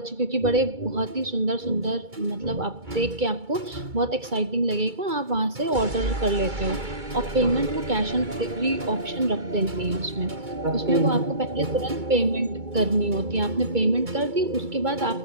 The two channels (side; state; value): left; late; 2.3 ms